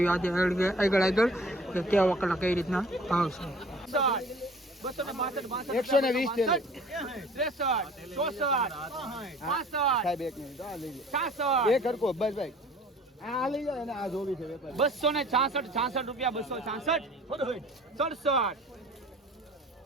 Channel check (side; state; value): both; normal; correlation 0.49